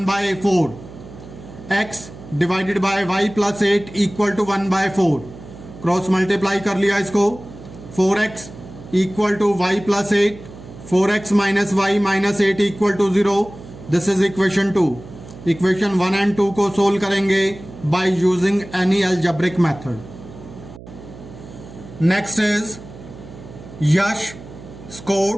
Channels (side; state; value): right; noise; hum, 16 dB below the sound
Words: x divided by y +8 equal to 1/4, cross multiply कर लिया इसको, 4x equal to y +8, 4x minus y minus 8 equal to 0, this is equation 2। Equation 1 and 2 को solve करेंगे by using any algebraic method. Next is Yash